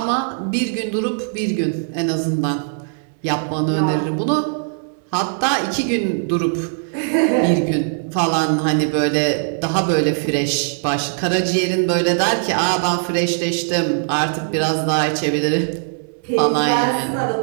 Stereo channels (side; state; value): left; silent; digital silence